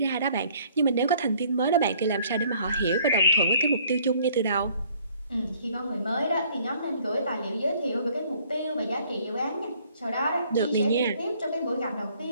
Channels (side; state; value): both; inverted; correlation -0.60